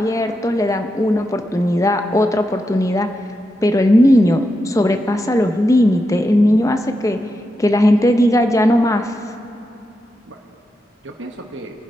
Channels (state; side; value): normal; both; correlation 0.87